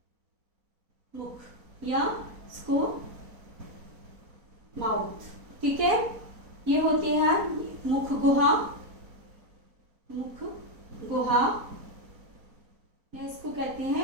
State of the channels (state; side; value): late; left; 4.2 ms